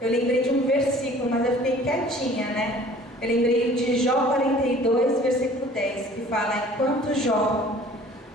lembrei de um versículo, mas eu fiquei quietinha, né? Eu lembrei de Jó 42, versículo 10, que fala, enquanto Jó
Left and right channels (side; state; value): both; normal; correlation 0.50